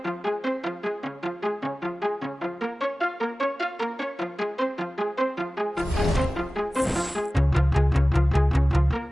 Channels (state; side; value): normal; both; correlation 0.97